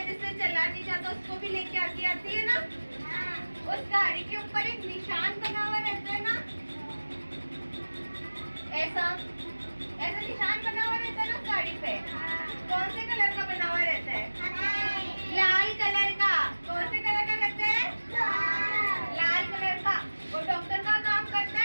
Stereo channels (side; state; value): both; inverted; correlation -1.00